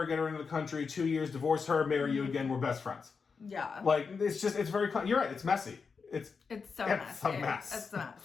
get her into the country, 2 years, divorce her, marry you again, we're best friends. Yeah. Like, it's very, you're right, it's messy. It's so messy. A mess. It's a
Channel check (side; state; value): right; quieter; 5.3 dB